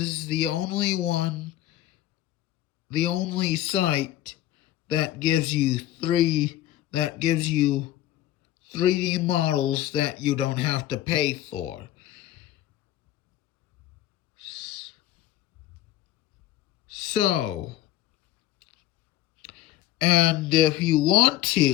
the only site that gives you 3D models that you don't have to pay for. So, and if you want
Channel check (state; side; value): quieter; right; 13.7 dB